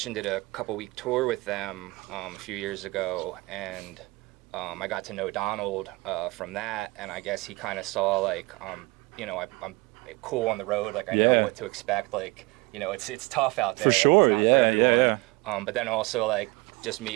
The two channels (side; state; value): left; quieter; 24.2 dB